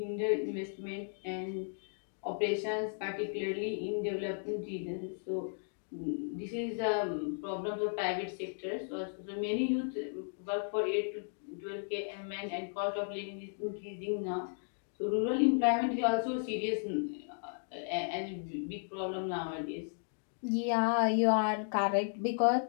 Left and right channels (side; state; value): right; silent; digital silence